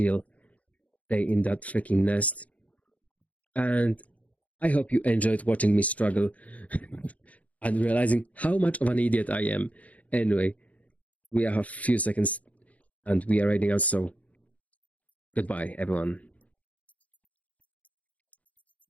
day in that freaking nest. And I hope you enjoyed watching me struggle and realizing how much of an idiot I am. Anyway, we have a few seconds and we are riding out, so goodbye, everyone.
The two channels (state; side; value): late; right; 0.069 ms